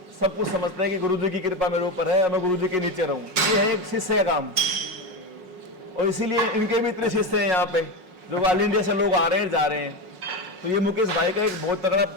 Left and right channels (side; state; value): left; late; 5.5 ms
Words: सब कुछ समझते हैं कि गुरुजी की कृपा मेरे ऊपर है और मैं गुरुजी के नीचे रहूं। ये है एक शिष्य का काम, और इसीलिए इनके भी इतने शिष्य हैं यहाँ पे, जो ऑल इंडिया से लोग आ रहे हैं, जा रहे हैं। तो ये मुकेश भाई का एक बहुत तगड़ा